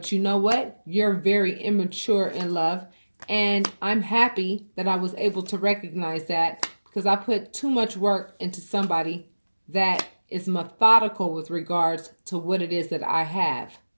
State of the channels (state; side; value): inverted; both; correlation -1.00